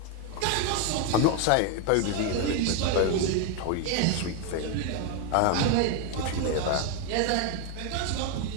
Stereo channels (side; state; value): both; different; correlation 0.01